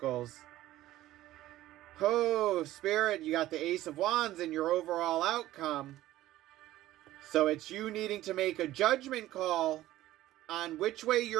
Oh, spirit, you got the Ace of Wands in your overall outcome. So it's you needing to make a judgment call on which way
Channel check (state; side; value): quieter; left; 15.1 dB